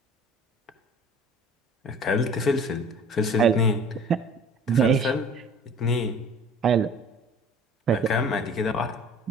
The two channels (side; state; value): both; normal; correlation 0.46